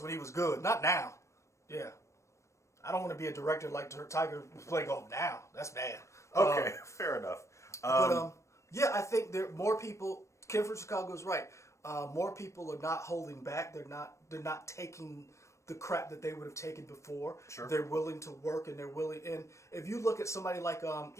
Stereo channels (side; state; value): right; late; 0.14 ms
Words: when he was good, not now. Yeah. I don't want to be a director like Tiger play golf now. That's bad. Okay, fair enough. Yeah, I think there more people. Kim from Chicago is right. More people are not holding back. They're not taking the crap that they would have taken before. Sure. They're willing to work and they're willing. And if you look at somebody like